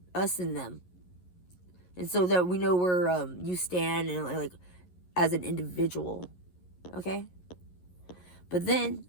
us and them, and so that we know where you stand and as an individual. Okay, but then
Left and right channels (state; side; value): late; right; 11 ms